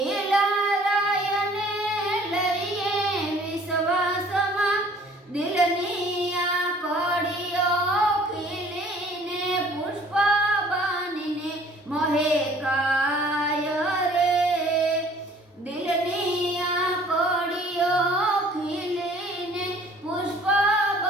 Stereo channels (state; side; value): normal; both; correlation 0.54